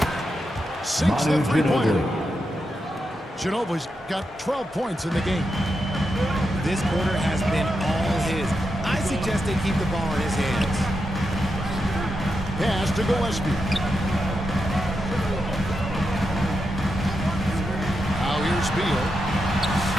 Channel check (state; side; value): normal; both; correlation 0.86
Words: Sinks Manu the 3-pointer. Ginobili. Ginobili's got 12 points in the game. This quarter has been all his. I suggest they keep the ball in his hands. Pass to Gillespie. Now here's Beal.